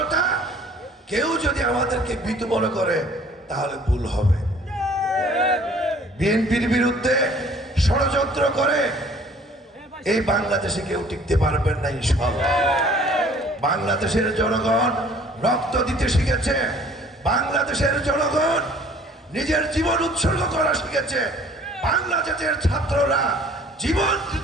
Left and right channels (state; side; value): normal; both; correlation 0.53